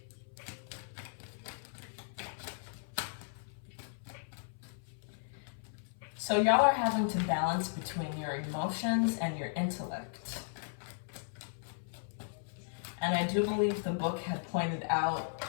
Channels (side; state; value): right; silent; 54 dB below the other